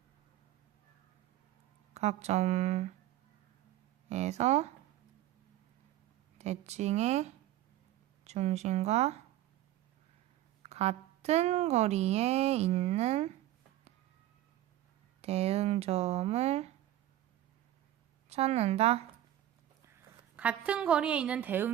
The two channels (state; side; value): quieter; left; 13.5 dB